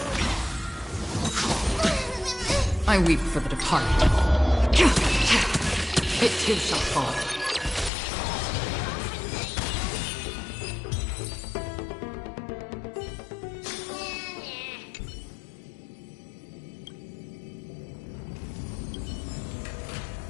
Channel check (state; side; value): drops out; right; at 7.9 s